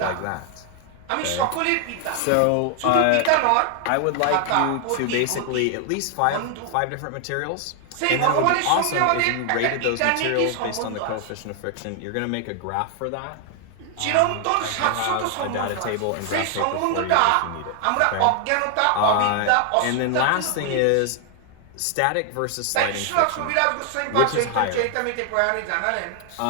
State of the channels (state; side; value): different; both; correlation 0.00